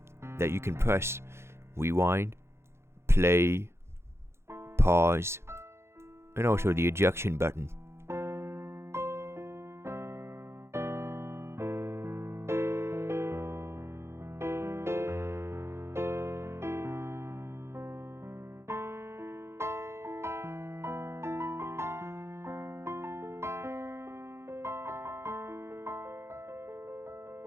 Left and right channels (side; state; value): left; late; 0.13 ms